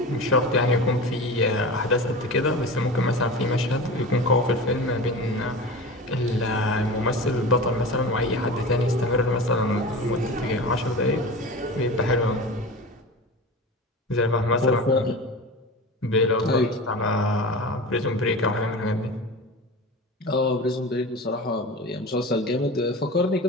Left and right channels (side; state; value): both; normal; correlation 0.31